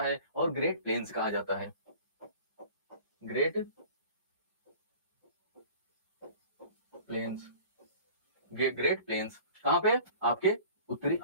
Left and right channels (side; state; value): both; inverted; correlation -0.44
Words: है और ग्रेट प्लेन्स कहा जाता है। ग्रेट प्लेन्स, ग्रेट प्लेन्स कहां पे, आपके उत्तरी